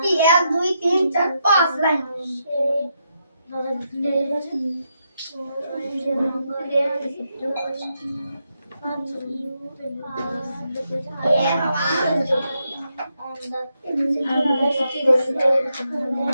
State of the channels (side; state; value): both; inverted; correlation -0.82